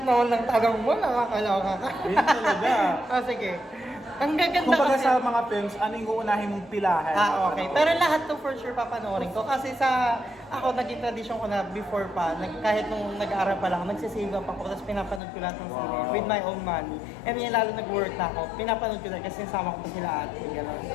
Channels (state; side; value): drops out; right; at 15.2 s